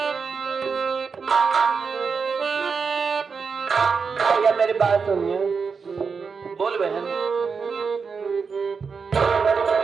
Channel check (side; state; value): left; quieter; 5.4 dB